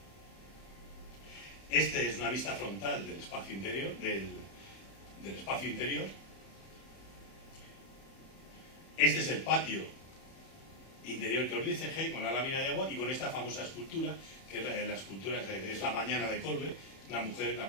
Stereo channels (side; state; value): right; late; 31 ms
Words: Este es una vista frontal del espacio interior, del espacio interior. Este es el patio interior que os dice G, con la lámina de agua y con esta famosa escultura, que la escultura es la mañana de Colbe, una mujer, la